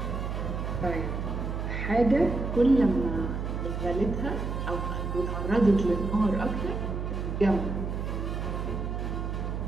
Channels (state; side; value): noise; right; hum, 3 dB below the sound